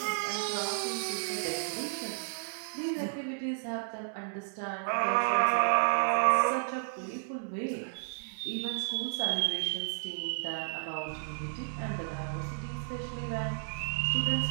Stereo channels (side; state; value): left; silent; digital silence